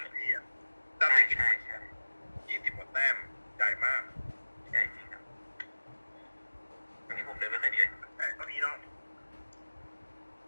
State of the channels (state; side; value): inverted; both; correlation -1.00